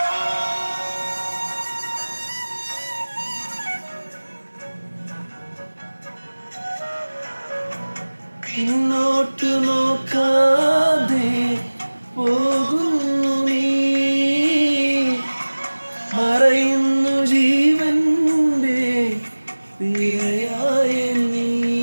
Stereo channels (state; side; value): inverted; both; correlation -1.00